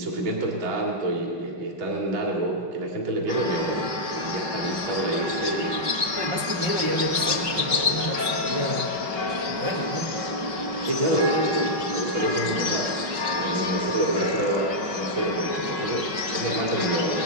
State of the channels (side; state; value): left; late; 5.3 ms